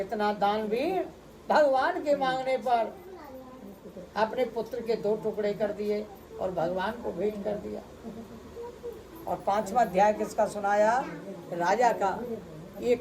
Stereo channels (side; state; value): both; identical; correlation 1.00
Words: दानवीर भगवान के मांगने पर अपने पुत्र के 2 टुकड़े कर दिए और भगवान को भेंट कर दिया। और 5वां अध्याय किसका सुनाया? राजा का। ये